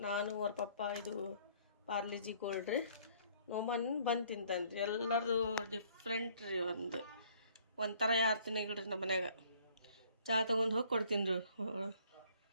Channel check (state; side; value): inverted; both; correlation -0.60